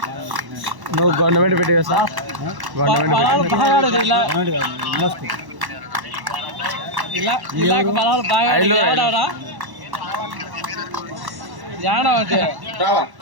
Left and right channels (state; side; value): late; left; 1.1 ms